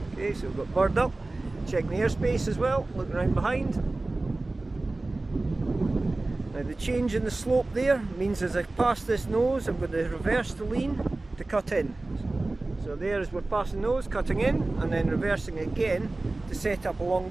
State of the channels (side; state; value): left; quieter; 3.1 dB